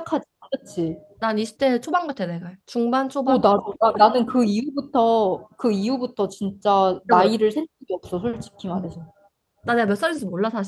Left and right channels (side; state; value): both; identical; correlation 1.00